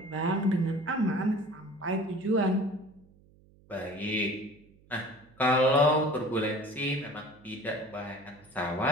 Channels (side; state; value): right; noise; hum, 28 dB below the sound